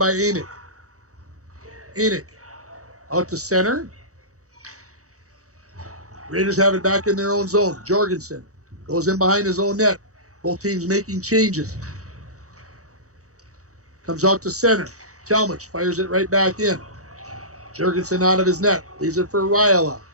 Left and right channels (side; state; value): left; late; 0.65 ms